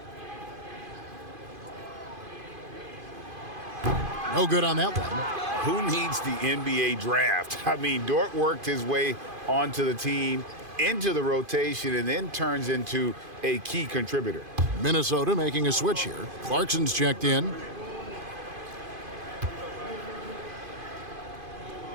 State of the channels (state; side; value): late; left; 2.5 ms